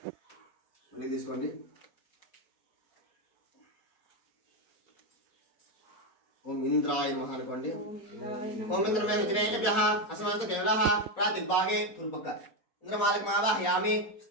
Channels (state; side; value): late; right; 4.2 ms